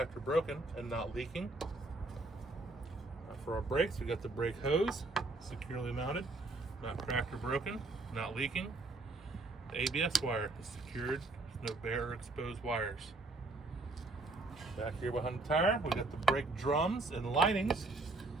or broken, and not leaking. For our brakes, we got the brake hose, securely mounted, not cracked or broken, not leaking. The ABS wire is secured, no bare or exposed wires. Back here behind the tire, we got the brake drums and linings.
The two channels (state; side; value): quieter; left; 3.2 dB